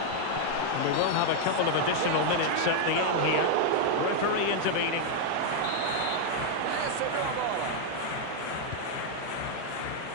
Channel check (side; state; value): both; different; correlation 0.00